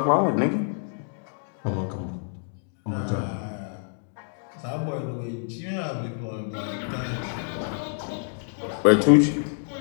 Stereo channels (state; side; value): silent; right; 60 dB below the other